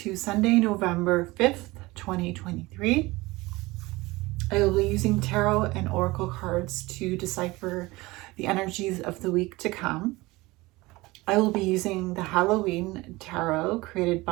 Sunday, November 5th, 2023. I will be using tarot and oracle cards to decipher the energies of the week to come. I will be using the Halloween tarot created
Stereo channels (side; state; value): left; quieter; 21.2 dB